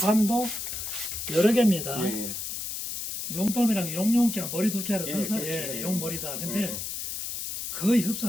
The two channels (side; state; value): left; noise; hiss, 5 dB below the sound